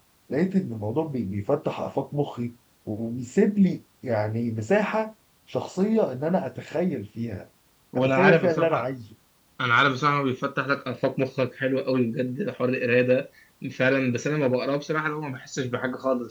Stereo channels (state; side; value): identical; both; correlation 1.00